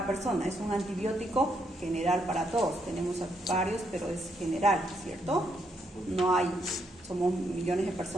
persona, es un antibiótico general para todos. Tenemos varios, pero es general, ¿cierto? No hay, somos millones de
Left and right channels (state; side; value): normal; both; correlation 0.76